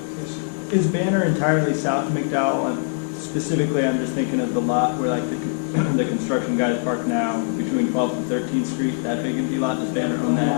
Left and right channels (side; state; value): right; silent; digital silence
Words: Is Banner entirely south of McDowell? And specifically, I'm just thinking of the lot where like the construction guys park now between 12th and 13th Street. That big empty lot, does Banner own